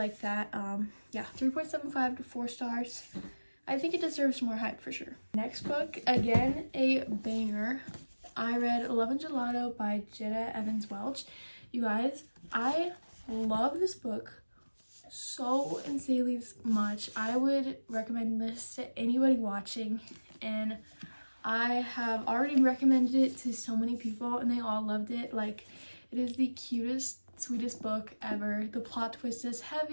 that. Yeah, 3.75 to 4 stars. I think it deserves more hype for sure. Next book, again, a banger. I read Love and Gelato by Jenna Evans Welch. You guys, I love this book so insanely much. I would recommend this to anybody watching, and I have already recommended it to so many people and they all loved it. Like, it is the cutest, sweetest book ever. The plot twist is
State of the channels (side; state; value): both; inverted; correlation -1.00